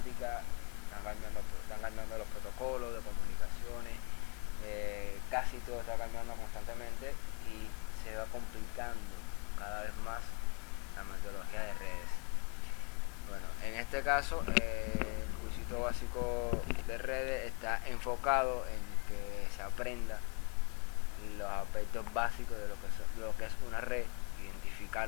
están cambiando los protocolos de comunicaciones, casi todo está cambiando constantemente y se va complicando cada vez más la metodología de redes. Bueno, en este caso, el cursito básico de redes está enfocado en que se aprenda los aspectos básicos de lo que es una red,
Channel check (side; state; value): right; quieter; 34.3 dB